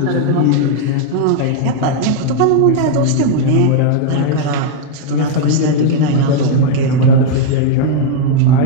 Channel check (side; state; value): both; different; correlation 0.00